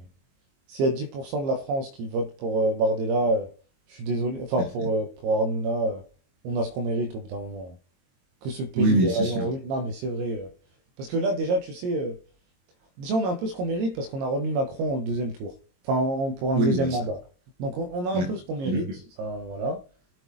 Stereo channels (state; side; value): late; left; 22 ms